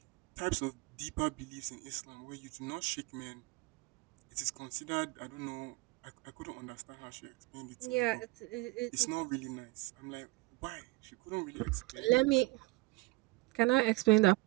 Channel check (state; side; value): quieter; left; 23.5 dB